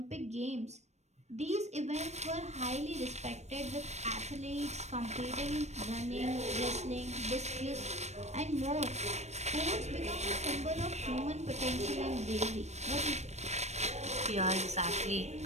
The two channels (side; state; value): left; late; 0.32 ms